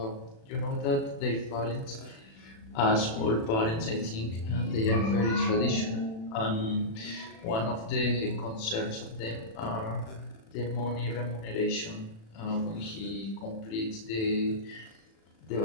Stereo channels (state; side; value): late; right; 36 ms